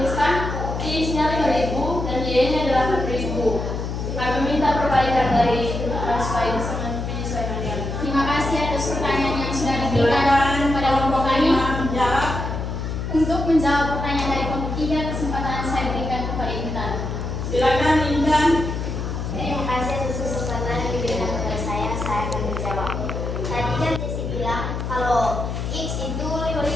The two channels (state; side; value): noise; left; hum, 4 dB below the sound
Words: X-nya 5.000 dan Y-nya 8.000. Kami minta perbaikan dari supaya bisa menyesuaikan dengan. Terima kasih atas pertanyaan yang sudah diberikan Silakan kepada kelompok kami. 5 menjawab. Untuk menjawab pertanyaan dari kelompok 3, kesempatan saya berikan kepada Intan. Silakan Intan. Terima kasih atas kesempatan yang diberikan kepada saya akan menjawab. Tadi kan Jessie bilang kalau X itu 5.000.